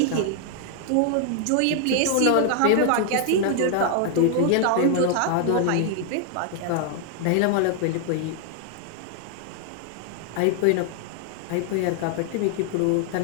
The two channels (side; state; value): both; different; correlation 0.00